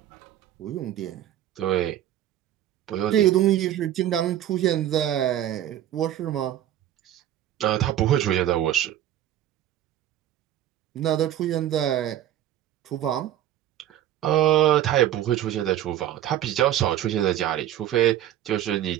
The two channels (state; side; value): quieter; left; 12.1 dB